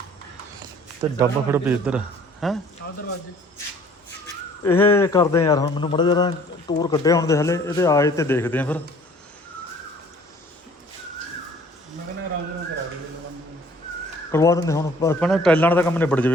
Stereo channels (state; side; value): normal; both; correlation 0.53